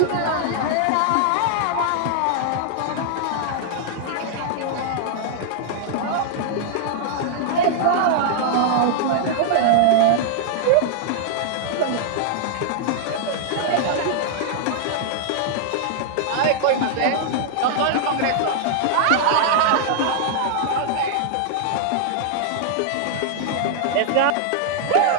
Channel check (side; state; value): both; different; correlation -0.01